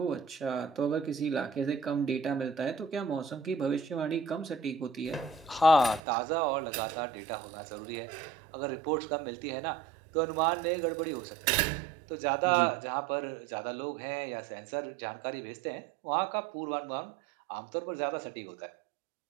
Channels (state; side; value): drops out; left; at 6.0 s